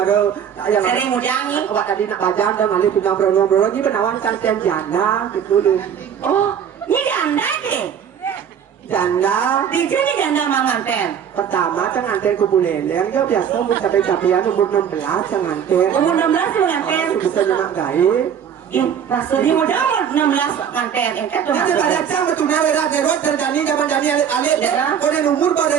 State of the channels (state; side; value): quieter; left; 8.3 dB